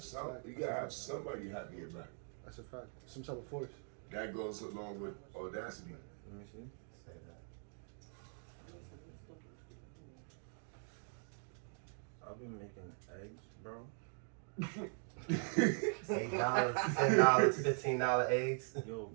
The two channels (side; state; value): left; silent; 50 dB below the other